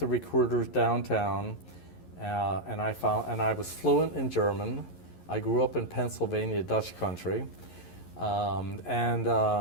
recruiters downtown. And I was fluent in German. I grew up in Pennsylvania, Dutch country. So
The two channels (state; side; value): late; right; 11 ms